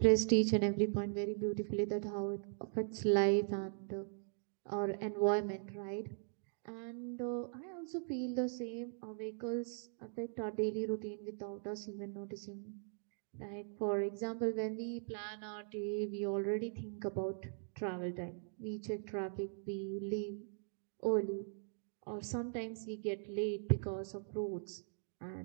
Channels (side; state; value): left; silent; digital silence